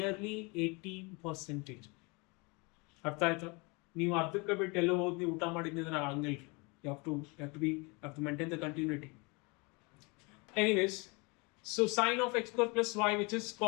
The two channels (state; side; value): quieter; right; 28.8 dB